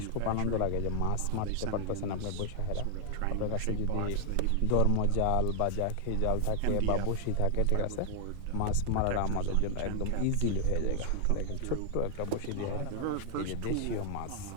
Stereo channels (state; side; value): different; both; correlation 0.00